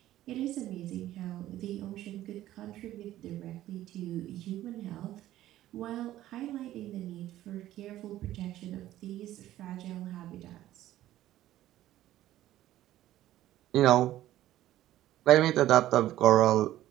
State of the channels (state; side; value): quieter; left; 14.0 dB